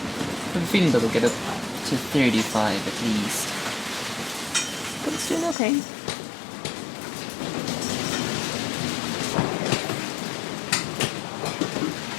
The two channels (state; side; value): drops out; right; at 5.6 s